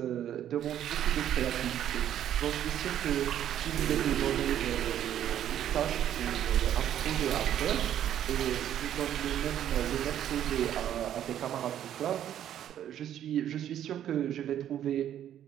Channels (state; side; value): quieter; left; 10.8 dB